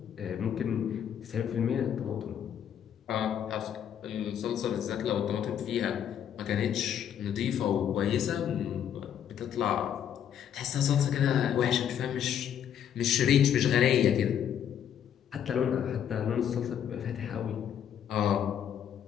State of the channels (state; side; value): quieter; right; 9.3 dB